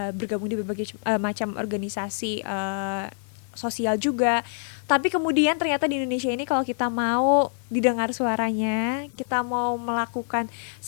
bergabung di berbagai macam organisasi sosial juga. Tapi kemudian ternyata di Indonesia ini kalau kita mau didengar suaranya, kita mau melakukan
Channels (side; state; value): right; silent; digital silence